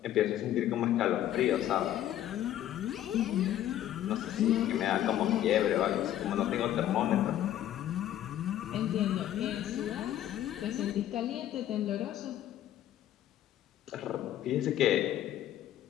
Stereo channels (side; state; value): right; quieter; 12.1 dB